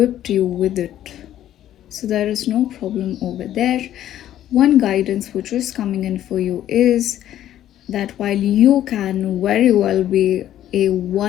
you with it. So there is no problem over there. One guidance which is coming in for you is that while you can very well be a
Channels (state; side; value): quieter; right; 12.0 dB